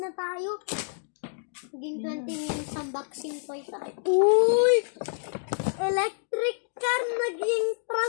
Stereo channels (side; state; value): right; silent; digital silence